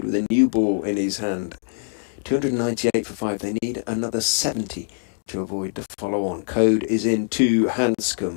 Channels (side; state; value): right; silent; digital silence